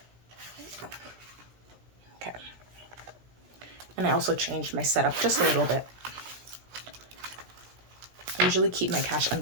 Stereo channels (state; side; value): late; left; 16 ms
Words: Okay. And I also changed my setup just a little bit. I usually keep my cash